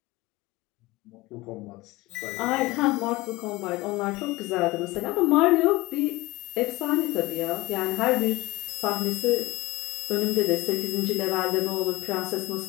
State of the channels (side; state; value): right; quieter; 20.8 dB